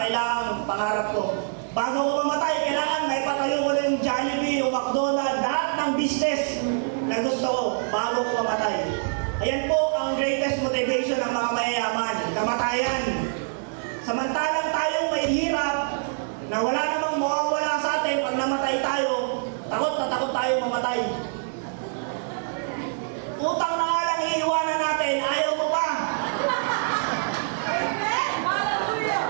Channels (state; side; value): silent; left; digital silence